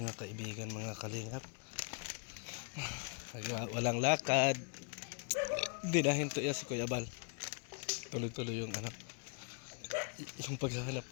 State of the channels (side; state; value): right; quieter; 39.3 dB